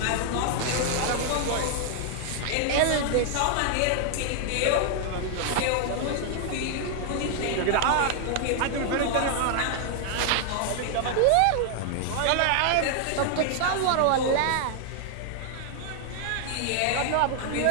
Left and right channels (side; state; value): both; different; correlation 0.00